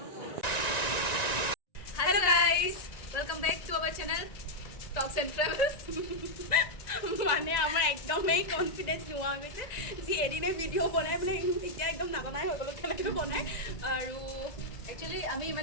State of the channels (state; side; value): late; right; 1.9 ms